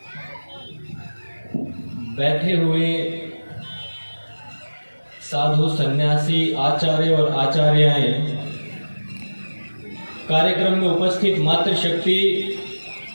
बैठे हुए साधु सन्यासी आचार्य और आचार्याएं, कार्यक्रम में उपस्थित मातृशक्ति,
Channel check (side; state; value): both; inverted; correlation -1.00